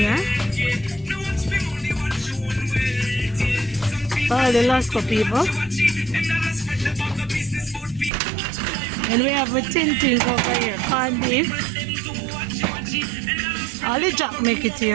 All the Lasco people. And we have the tin things over here, corned beef. All the jack make it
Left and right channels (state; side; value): drops out; left; at 8.1 s